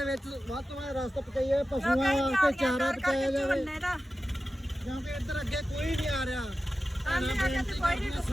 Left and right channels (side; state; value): both; normal; correlation 0.94